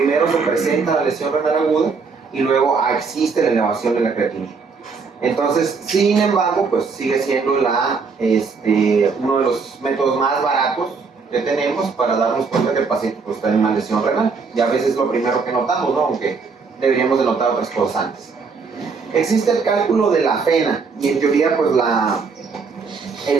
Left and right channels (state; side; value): quieter; left; 5.0 dB